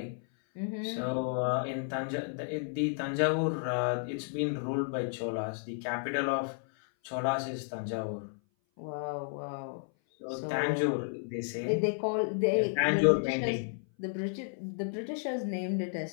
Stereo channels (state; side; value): silent; right; 56 dB below the other